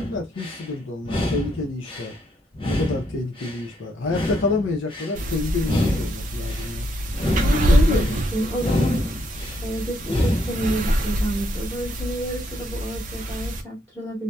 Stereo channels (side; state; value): both; normal; correlation 0.75